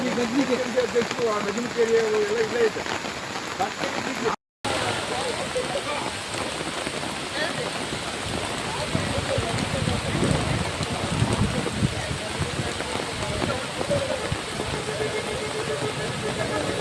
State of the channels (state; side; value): identical; both; correlation 1.00